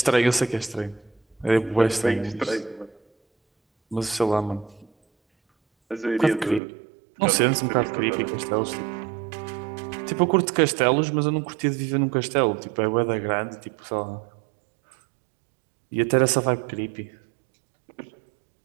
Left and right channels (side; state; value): left; drops out; at 6.6 s